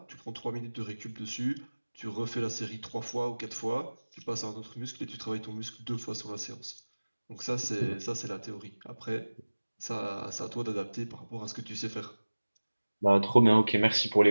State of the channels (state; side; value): inverted; both; correlation -1.00